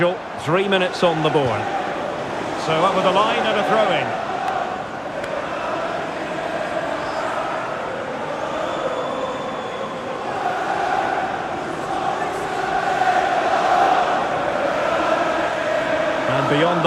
3 minutes on the board. So up with the line and a throw-in. And beyond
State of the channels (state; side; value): identical; both; correlation 1.00